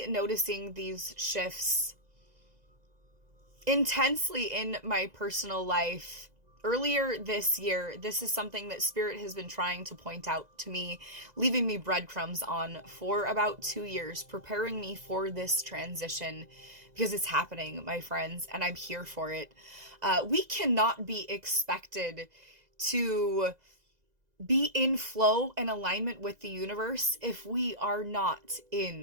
noticing these shifts intensely in my personal life earlier this year. This is something that Spirit has been trying to point out to me, leaving me breadcrumbs on for about 2 years, preparing me for this transition because it's happening, my friends, and I'm here for it. We cannot be expected to be in flow and alignment with the universe if we are not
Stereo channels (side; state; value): left; late; 2.0 ms